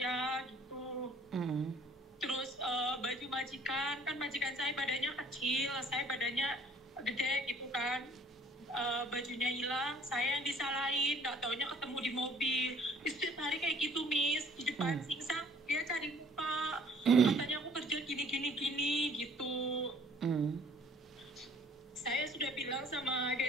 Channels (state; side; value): normal; both; correlation 0.56